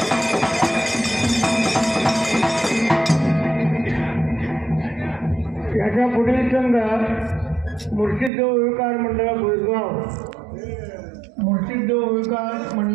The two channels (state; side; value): drops out; left; at 8.3 s